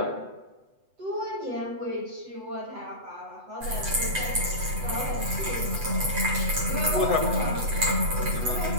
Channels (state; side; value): late; left; 8.0 ms